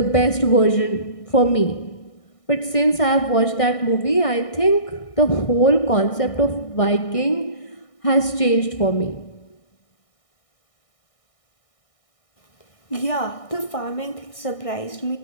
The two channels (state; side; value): late; right; 1.6 ms